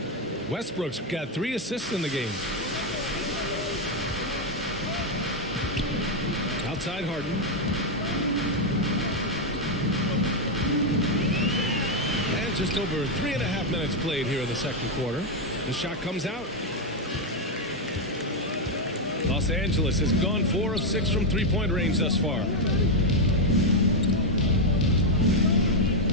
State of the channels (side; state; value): both; normal; correlation 0.03